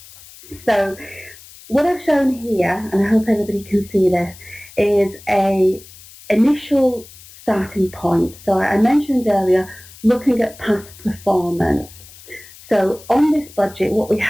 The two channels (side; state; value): left; noise; hiss, 20 dB below the sound